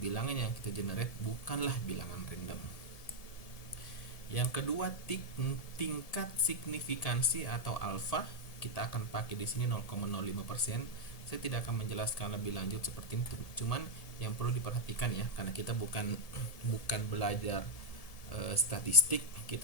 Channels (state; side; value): late; right; 1.7 ms